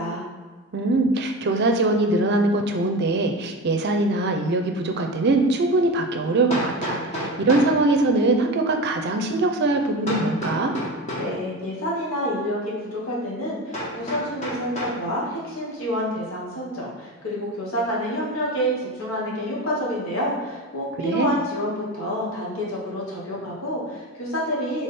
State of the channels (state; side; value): normal; both; correlation 0.26